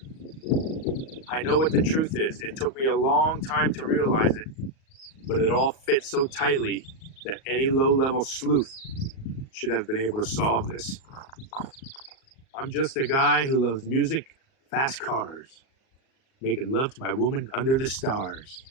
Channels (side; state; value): right; late; 38 ms